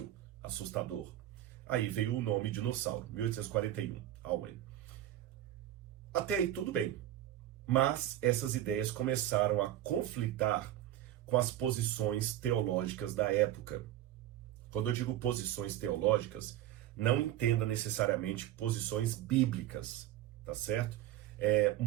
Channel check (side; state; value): left; quieter; 12.9 dB